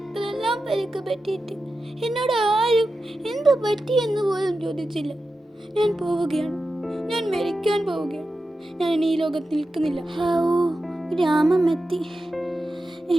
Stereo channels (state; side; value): normal; both; correlation 0.91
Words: പരിക്ക് പറ്റിയിട്ട് എന്നോട് ആരും എന്ത് പറ്റിയെന്ന് പോലും ചോദിച്ചില്ല. ഞാൻ പോവുകയാണ്. ഞാൻ മരിക്കാൻ പോവുകയാണ്. ഞാൻ ഇനി ഈ ലോകത്ത് നിൽക്കുന്നില്ല. ഗ്രാമം എത്തി.